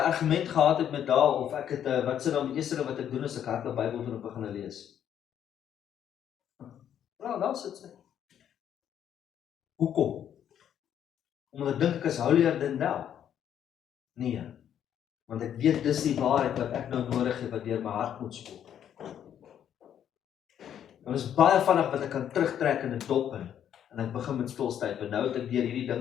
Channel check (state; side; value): quieter; right; 9.7 dB